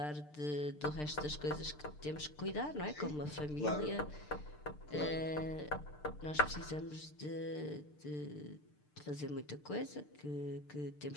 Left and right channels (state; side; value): late; right; 6.7 ms